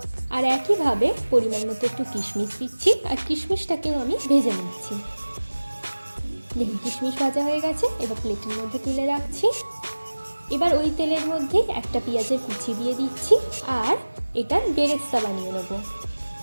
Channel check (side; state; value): both; inverted; correlation -1.00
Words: আর একইভাবে পরিমাণ মতো একটু কিশমিশ দিচ্ছি। আর কিশমিশটাকেও আমি ভেজে নিচ্ছি। দেখুন, কিশমিশ ভাজা হয়ে গেছে। এবার প্লেটের মধ্যে তুলে রাখছি। এবার ওই তেলের মধ্যে একটা পেঁয়াজের কুচি দিয়ে দিচ্ছি। আর এটার বেরেস্তা বানিয়ে নেব।